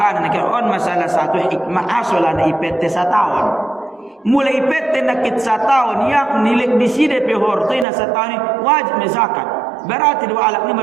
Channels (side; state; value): left; drops out; at 7.9 s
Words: nak on masalah satu hikmah asolan IPT setahun mulai IPT nakit setahun yang nilai di sini pe hortoi na setahun wajib zakat. Berarti dua alat ni